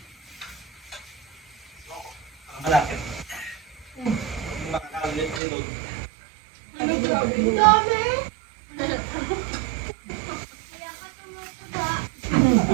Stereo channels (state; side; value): drops out; left; at 5.4 s